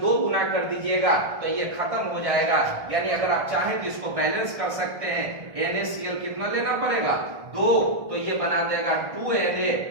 गुना कर दीजिएगा तो ये खत्म हो जाएगा। यानी अगर आप चाहें तो इसको बैलेंस कर सकते हैं। NaCl कितना लेना पड़ेगा, 2, तो ये बना देगा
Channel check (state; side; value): late; left; 1.6 ms